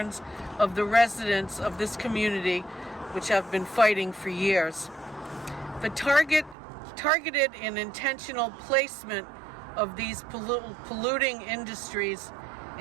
of the residents of this community, which have been fighting for years. The targeted and intentional placement of these polluting industries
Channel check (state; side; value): drops out; left; at 6.6 s